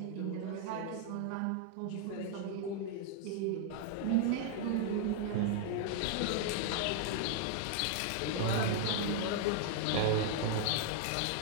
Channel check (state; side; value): different; both; correlation 0.00